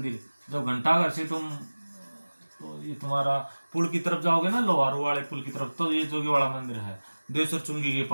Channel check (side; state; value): both; inverted; correlation -1.00